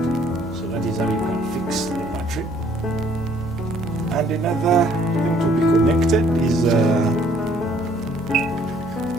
So that is how you can fix the battery. And another thing to be connected is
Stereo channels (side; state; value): both; normal; correlation 0.62